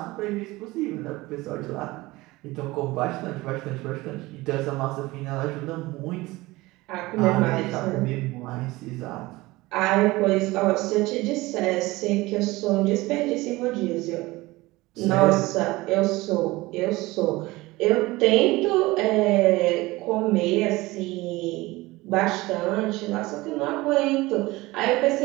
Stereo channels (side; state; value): left; quieter; 20.4 dB